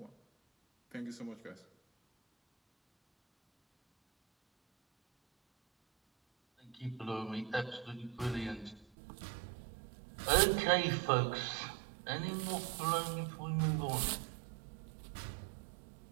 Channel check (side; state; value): left; drops out; at 8.8 s